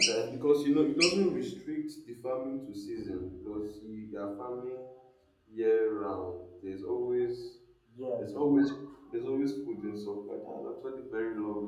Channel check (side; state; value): both; identical; correlation 1.00